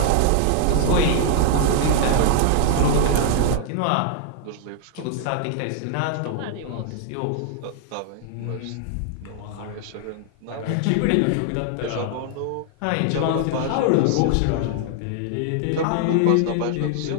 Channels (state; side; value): different; both; correlation 0.00